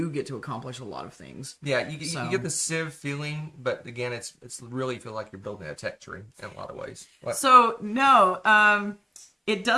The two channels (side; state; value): both; identical; correlation 1.00